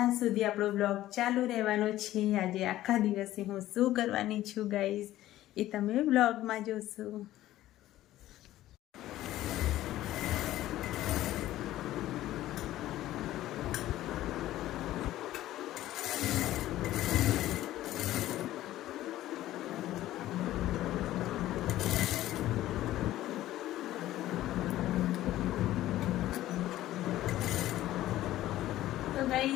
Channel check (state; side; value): quieter; right; 14.6 dB